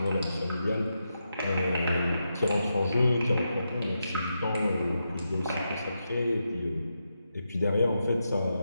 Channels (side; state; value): both; inverted; correlation -0.86